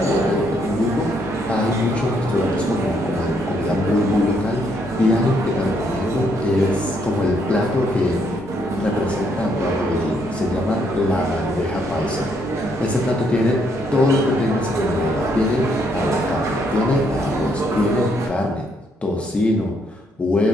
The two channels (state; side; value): normal; both; correlation 0.72